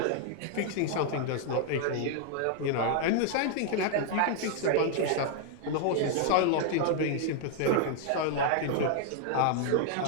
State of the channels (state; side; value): different; both; correlation 0.00